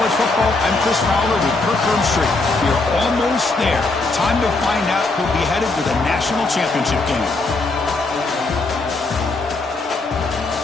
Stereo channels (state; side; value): quieter; right; 3.4 dB